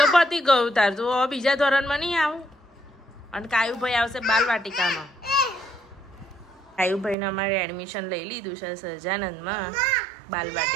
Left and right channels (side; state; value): left; drops out; at 7.2 s